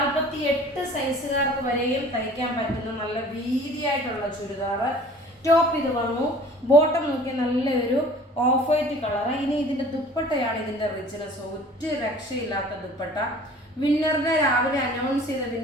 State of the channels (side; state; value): both; normal; correlation 0.47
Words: സൈസുകാർക്ക് വരെയും തയ്ക്കാൻ പറ്റുന്ന നല്ല വീതിയായിട്ടുള്ള ചുരിദാർ. ടോപ്പ് ഇത് വന്നു. ബോട്ടം നോക്കി നല്ലൊരു ഓഫ് വൈറ്റ് കളർ. ഇനി ഇതിന്റെ ദുപ്പട്ടയാണ് ഇതിന്റെ റിച്ച്നെസ്. ഒറ്റ രക്ഷയില്ലാത്ത ദുപ്പട്ട. വിന്നറിനെ രാവിലെ അനൗൺസ് ചെയ്ത